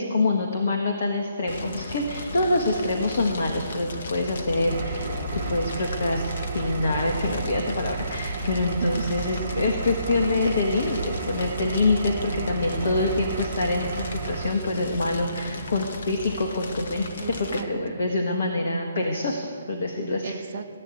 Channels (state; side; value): inverted; both; correlation -0.72